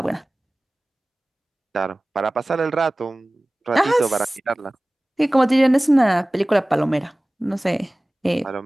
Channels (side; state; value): both; normal; correlation 0.98